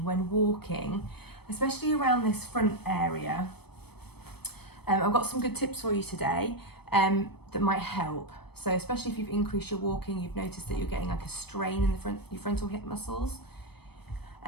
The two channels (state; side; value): late; right; 0.97 ms